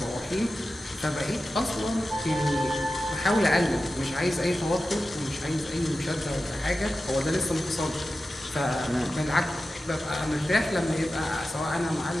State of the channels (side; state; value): both; normal; correlation 0.93